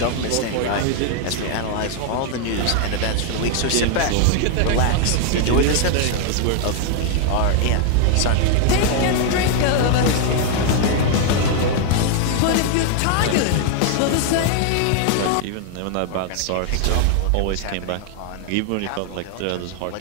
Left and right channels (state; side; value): different; both; correlation 0.00